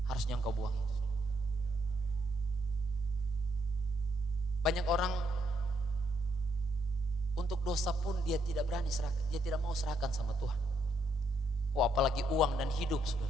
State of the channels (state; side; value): normal; both; correlation 0.75